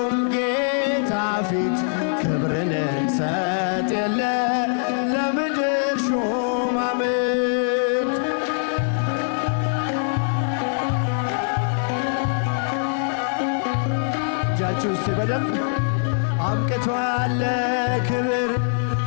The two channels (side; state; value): right; silent; digital silence